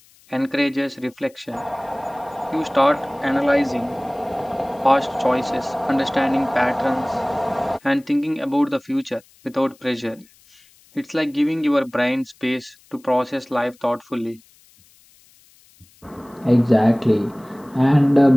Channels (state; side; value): noise; left; hiss, 29 dB below the sound